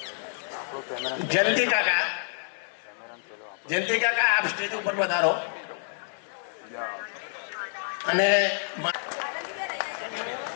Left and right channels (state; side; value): silent; right; 59 dB below the other